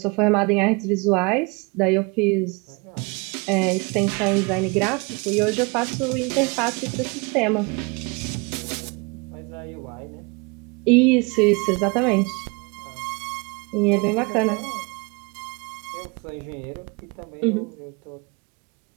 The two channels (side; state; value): left; quieter; 29.4 dB